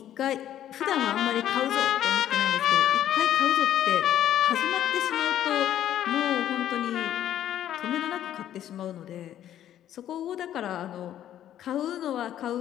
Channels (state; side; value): quieter; right; 11.4 dB